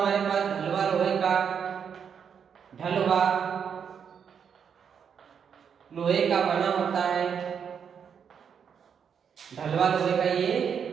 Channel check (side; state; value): left; quieter; 7.3 dB